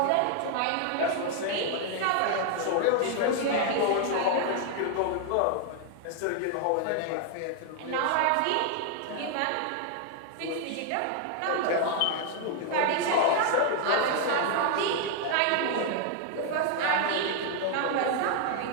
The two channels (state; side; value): different; both; correlation 0.00